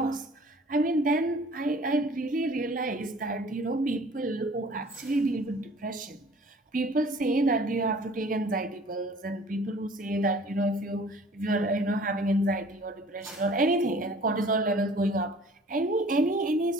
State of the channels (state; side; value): normal; both; correlation 0.50